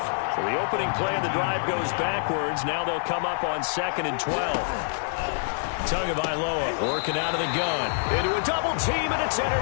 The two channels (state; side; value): silent; right; 61 dB below the other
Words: So the opening play of the drive goes backwards. Now they'll come up on 2nd and 12. Tagovailoa working out of the gun. Into a double team, and it's